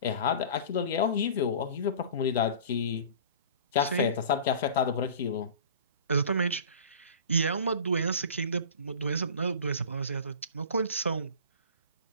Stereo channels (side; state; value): both; inverted; correlation -0.40